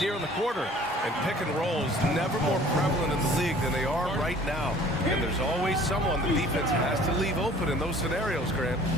here in the quarter. And pick and rolls never more prevalent in the league than they are right now. And there's always someone the defense has to leave open in those scenarios, Grant.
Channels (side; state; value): both; normal; correlation 0.51